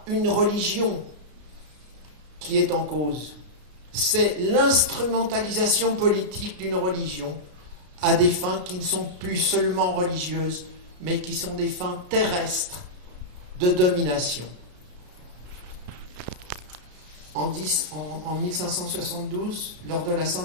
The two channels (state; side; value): late; left; 33 ms